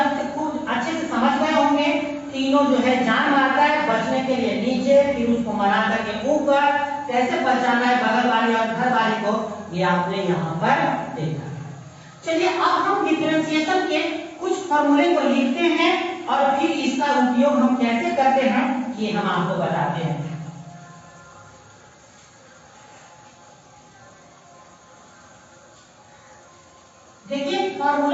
अच्छे से समझ गए होंगे। तीनों जो है जान मारता है बचने के लिए नीचे, फिर उसको मना करके ऊपर, कैसे बचाना है बगल वाली और घर वाली को, ये आपने यहाँ पर देखा। चलिए अब हम डिफरेंशिएशन के कुछ फॉर्मूले को लिखते हैं और फिर इसका उपयोग हम कैसे करते हैं ये हम आपको बताते हैं। देखिए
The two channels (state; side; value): identical; both; correlation 1.00